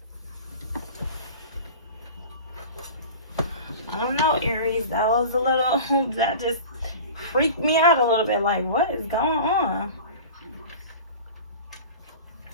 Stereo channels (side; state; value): both; inverted; correlation -0.36